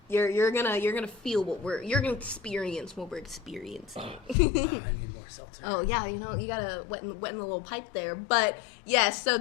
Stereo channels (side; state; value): right; drops out; at 4.4 s